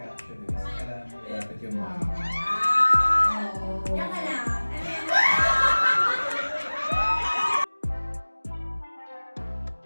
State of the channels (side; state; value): both; inverted; correlation -1.00